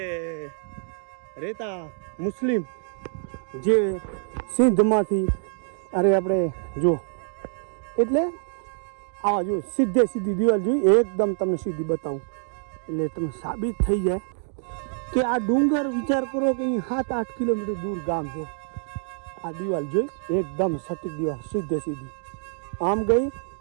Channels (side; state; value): left; silent; digital silence